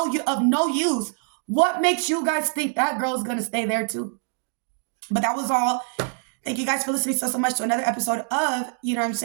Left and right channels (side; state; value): left; silent; 61 dB below the other